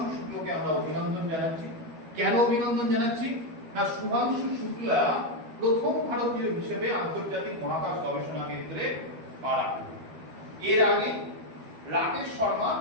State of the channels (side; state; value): left; late; 12 ms